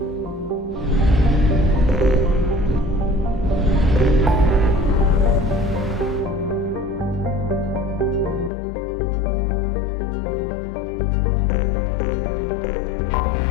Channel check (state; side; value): drops out; right; at 8.5 s